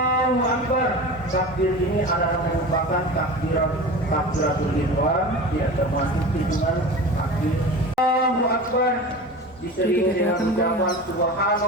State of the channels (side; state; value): both; normal; correlation 0.32